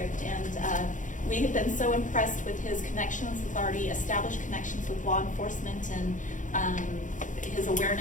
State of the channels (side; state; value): right; late; 0.37 ms